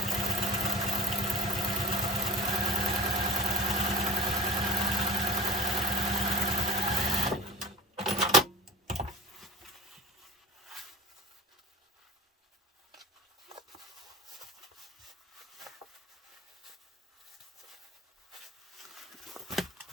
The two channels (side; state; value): both; normal; correlation 0.38